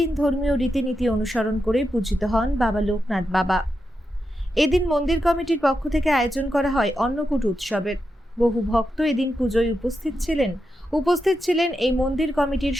ধর্মীয় রীতিনীতি অনুসরণ করে পূজিত হন বাবা লোকনাথ বাবা। এদিন মন্দির কমিটির পক্ষ থেকে আয়োজন করা হয় অন্নকূট উৎসবের। বহু ভক্ত এদিন পুজোয় উপস্থিত ছিলেন এই মন্দির কমিটির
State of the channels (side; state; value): both; normal; correlation 0.87